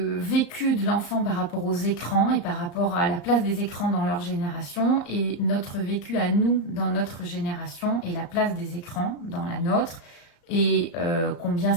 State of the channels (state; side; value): late; right; 34 ms